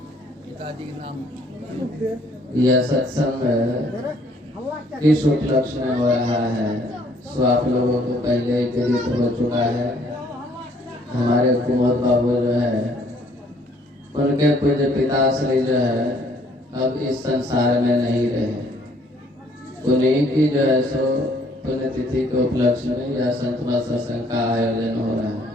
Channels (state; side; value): normal; both; correlation 0.62